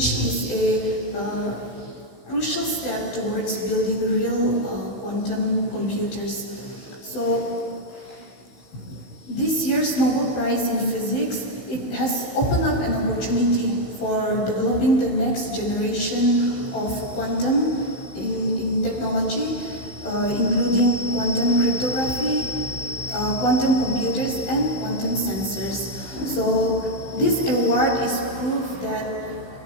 is a crucial step towards building real quantum computers. So, this year's Nobel Prize in Physics, it has opened up an opportunity for developing the next generation of quantum in technology, including quantum cryptography, quantum computers, and quantum sensors. So this award is proof that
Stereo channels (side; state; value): right; late; 16 ms